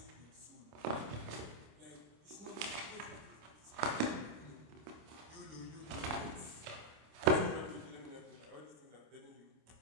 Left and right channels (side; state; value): left; late; 27 ms